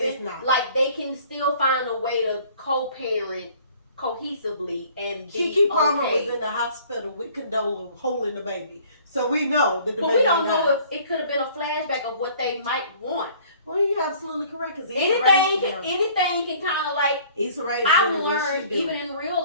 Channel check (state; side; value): inverted; both; correlation -0.53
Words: like they can still find a way to co-parent cohesively and be Kiki Palmer was in the hospital with Condola holding the baby, so we know that the baby. But we don't know if it could have been a flashback of what they might want. Well, you're absolutely correct. Because anything can kind of like. I've learned even in real